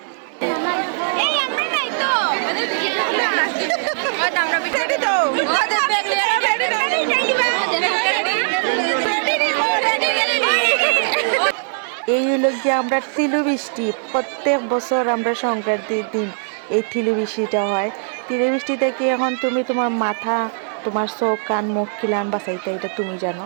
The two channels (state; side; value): silent; left; 57 dB below the other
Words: এই হলো গিয়ে আমরা তিলু বৃষ্টি, প্রত্যেক বছর আমরা সংক্রান্তির দিন এই তিলু বৃষ্টিটা হয়। তিলু বৃষ্টি থেকে এখন তুমি তোমার মাথা, তোমার চোখ, কান, মুখ খিলান বাঁচাইতে, এটা তুমি জানো।